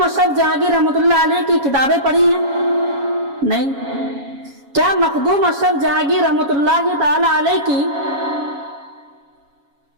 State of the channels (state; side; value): late; left; 7.2 ms